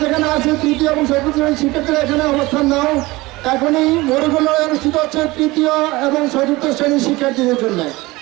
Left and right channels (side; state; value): left; quieter; 21.0 dB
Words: যেখানে আছে তৃতীয় এবং চতুর্থ শ্রেণীর শিক্ষার্থীরা এখানে অবস্থান নাও। এখনই মরুগুলো অনুষ্ঠিত হচ্ছে তৃতীয় এবং চতুর্থ শ্রেণীর শিক্ষার্থীদের জন্য।